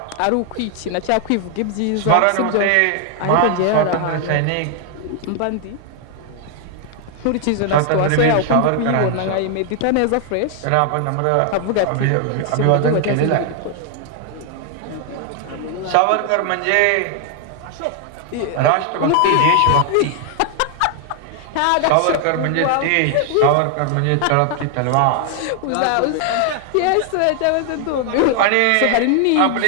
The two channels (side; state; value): both; different; correlation 0.00